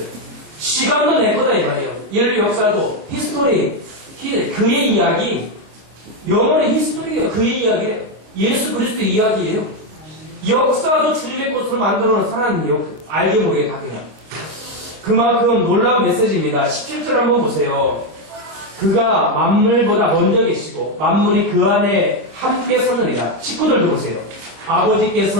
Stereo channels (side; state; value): left; late; 26 ms